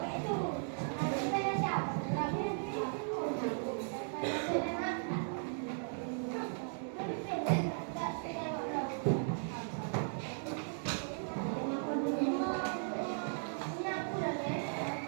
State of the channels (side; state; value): left; silent; digital silence